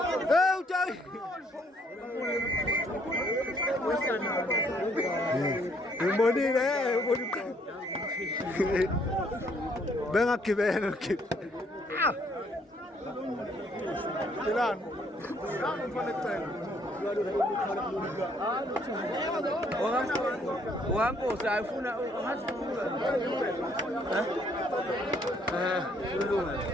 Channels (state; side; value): normal; both; correlation 0.67